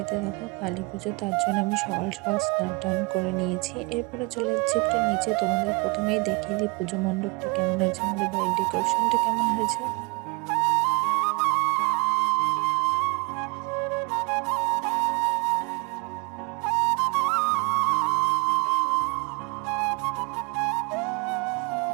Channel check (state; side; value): quieter; left; 29.4 dB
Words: দেখো কালী পুজো, তার জন্য আমি সকাল সকাল স্নান টান করে নিয়েছি। এরপরে চলে যাচ্ছি একটু নিচে, তোমাদের প্রথমেই দেখিয়ে দিই পুজো মণ্ডপটা কেমন হয়েছে, আমাদের বাড়ির ডেকোরেশনটা কেমন হয়েছে।